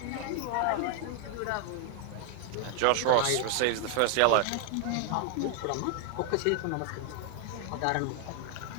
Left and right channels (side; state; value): both; different; correlation 0.01